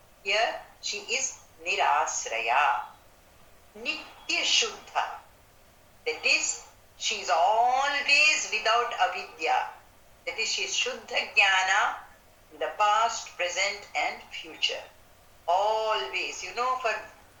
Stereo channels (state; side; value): identical; both; correlation 1.00